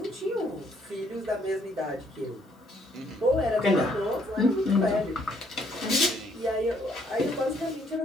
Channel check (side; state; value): both; normal; correlation 0.68